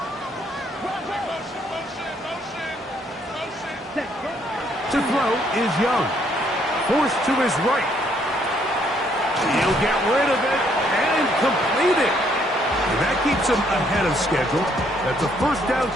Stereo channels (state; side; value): normal; both; correlation 0.68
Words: Set. To throw is Young. Forced to his right. He'll get rid of it and complete it. And that keeps him ahead of schedule. That's a first down